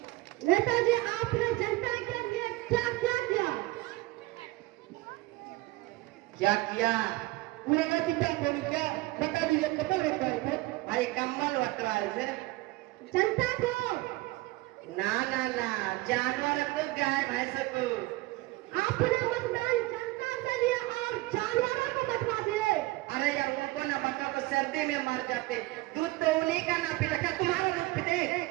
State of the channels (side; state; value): left; quieter; 20.3 dB